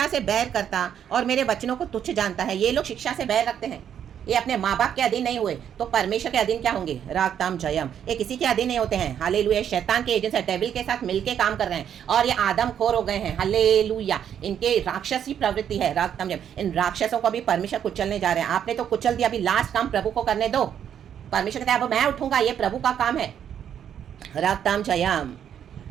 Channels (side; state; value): left; quieter; 9.1 dB